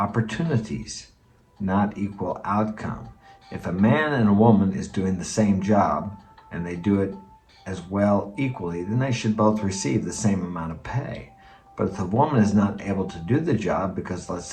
not equal outcome. If a man and a woman is doing the same job and they do it as well equally, then they should both receive the same amount of pay. But if the woman is not able to do the job because, let's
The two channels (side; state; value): both; identical; correlation 1.00